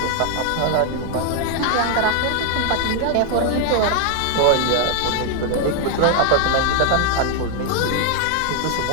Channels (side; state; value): both; different; correlation 0.00